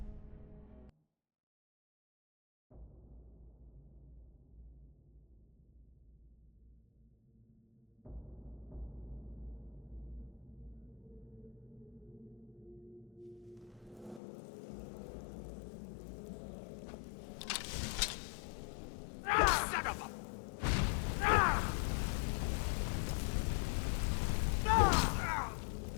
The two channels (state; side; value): drops out; right; at 14.2 s